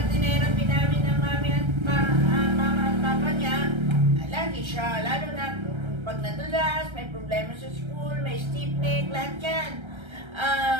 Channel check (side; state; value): left; late; 1.3 ms